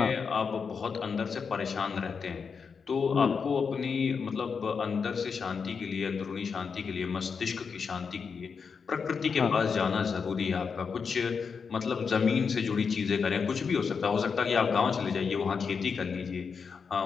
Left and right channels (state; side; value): quieter; right; 5.8 dB